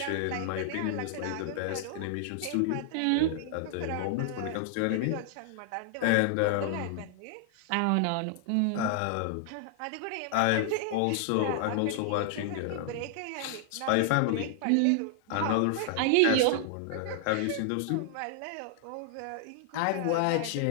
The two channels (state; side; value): different; both; correlation 0.00